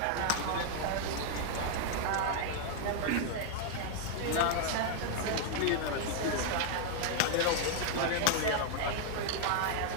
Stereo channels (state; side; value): different; both; correlation 0.00